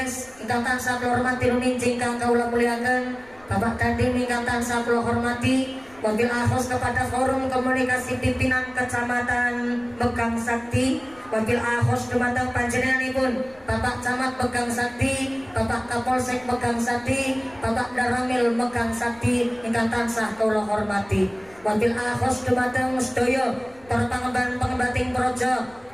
ingkang tansah kula hormati nulinjih, ingkang kawula mulyakaken, Bapak Dandim ingkang tansah kula hormati. Wabil akhos kepada Forum Komunikasi Pimpinan Kecamatan Megang Sakti, wabil akhos dumateng panjenenganipun Bapak Camat Megang Sakti, Bapak Kapolsek Megang Sakti, Bapak Daramil Megang Sakti ingkang tansah kula hormati. Wabil akhos dumateng sedaya para pengemban-pengembating projo,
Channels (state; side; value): noise; left; rumble, 27 dB below the sound